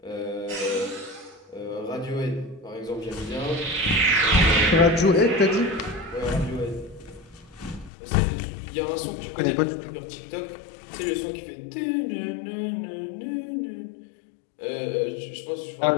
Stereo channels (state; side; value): drops out; right; at 7.9 s